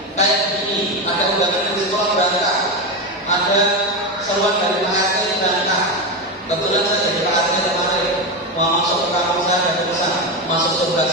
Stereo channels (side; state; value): both; normal; correlation 0.15